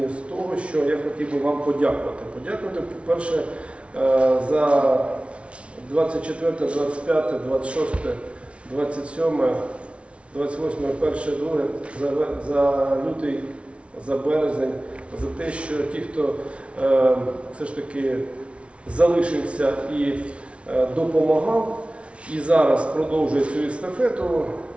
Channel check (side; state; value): left; late; 0.061 ms